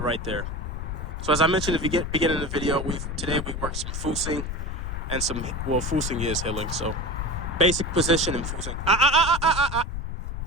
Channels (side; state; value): left; noise; rumble, 4 dB below the sound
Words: there. So as I mentioned at the beginning of the video, today we worked some foosing and foosing is healing. So basic position and foosing.